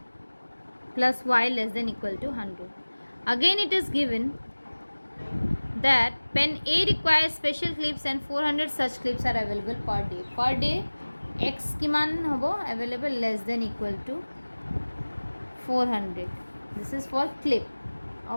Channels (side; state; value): both; inverted; correlation -1.00